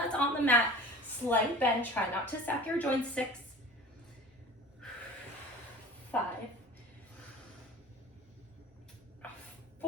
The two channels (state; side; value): normal; both; correlation 0.40